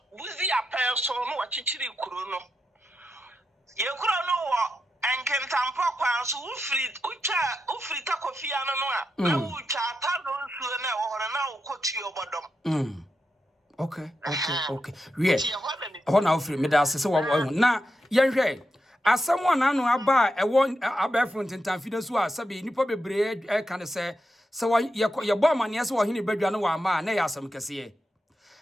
buzi apel so no wachichiri kuro no. Ye kuro no wo enkentampo kwa so ufri takofia no no a ucha ta no nsuo na wo hore na ukotu obodom. Okay. Wie. Ho na ufri me da asese wo na yenhwe asem ona no aba ewo abefo ntentamfi da so a sabe nipa bebre ka ne se ye bo amane se wo hene badwa no wa ma na ya asem kese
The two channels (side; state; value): both; normal; correlation 0.87